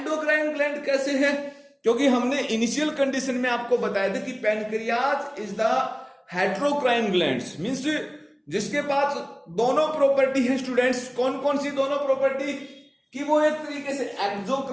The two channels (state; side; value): identical; both; correlation 1.00